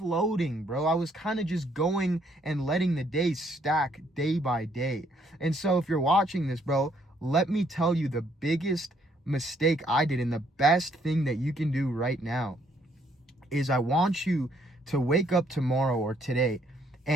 bro. I was kind of just going and letting the days stack day by day. And so if you're watching this, bro, let me tell you the biggest mistake I did, and the best thing that you can do right now is I want you to wake up tomorrow or today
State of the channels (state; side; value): normal; both; correlation 0.68